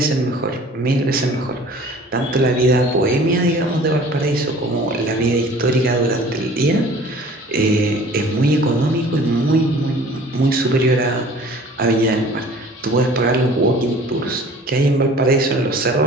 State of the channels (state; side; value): normal; both; correlation 0.48